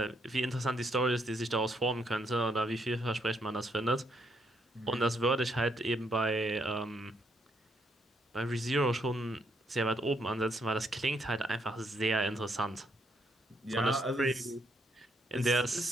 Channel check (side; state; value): both; normal; correlation 0.74